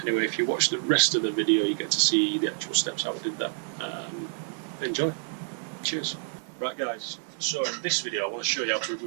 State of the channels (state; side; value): silent; left; digital silence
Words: Anyway, if you watch the rest of the video, you get to see the actual steps how I did that. Enjoy. Cheers. Right guys, so in this video I want to show you how to